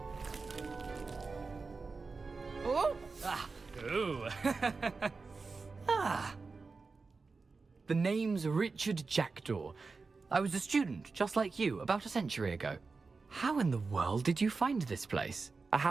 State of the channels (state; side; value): quieter; left; 4.3 dB